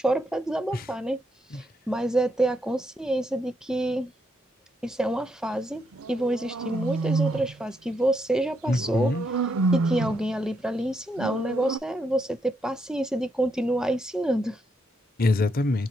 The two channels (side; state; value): both; normal; correlation 0.78